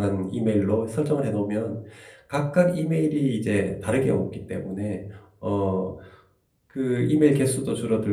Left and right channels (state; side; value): identical; both; correlation 1.00